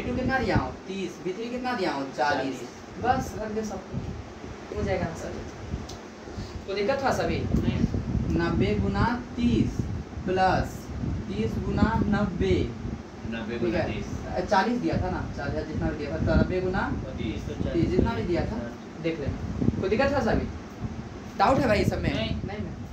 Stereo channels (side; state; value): both; identical; correlation 1.00